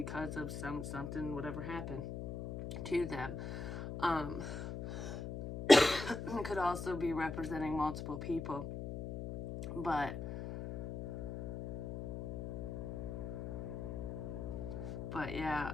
of something, whatever happened to them. It could also be representing multiple people. But yeah,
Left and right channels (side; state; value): left; noise; hum, 5 dB below the sound